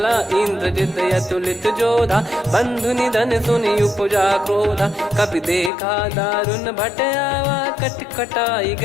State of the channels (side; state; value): right; drops out; at 5.7 s